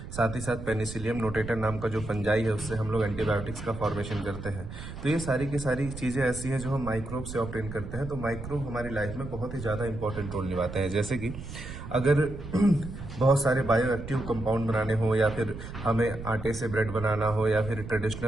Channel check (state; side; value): noise; right; rumble, 10 dB below the sound